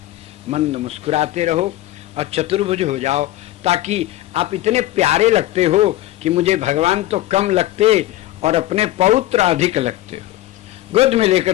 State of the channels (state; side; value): quieter; right; 15.2 dB